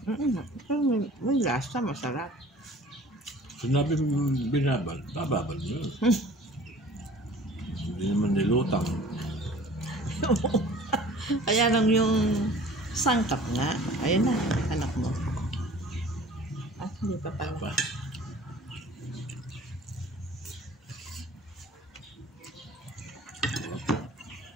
Pero may lasa, masarap. Sinabi binabal, bababal mo yun. Hindi naman nilutang. Kaya lang yung sangkap nga. Ayun na, anak mo. Ah, hindi pa pala. Pa.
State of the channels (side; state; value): both; normal; correlation 0.47